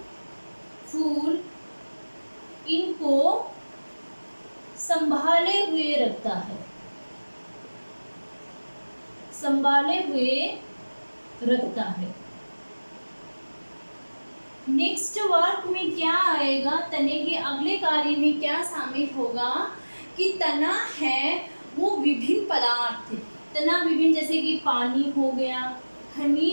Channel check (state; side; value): inverted; both; correlation -1.00